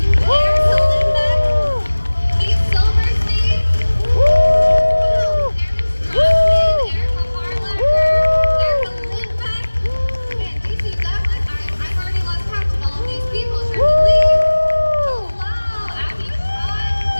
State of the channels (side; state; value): both; inverted; correlation -1.00